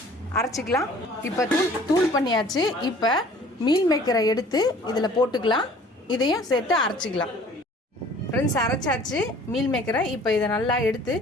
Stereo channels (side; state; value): both; normal; correlation 0.51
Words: அரைச்சிக்கலாம். இப்போ தூள் பண்ணியாச்சு. இப்போ மீல் மேக்கரை எடுத்து இதில் போட்டுக்கலாம். இதையும் சேர்த்து அரைச்சிக்கலாம். ஃப்ரெண்ட்ஸ், அரைச்சாச்சு மீல் மேக்கரை. இப்போ இதை நல்லா எடுத்து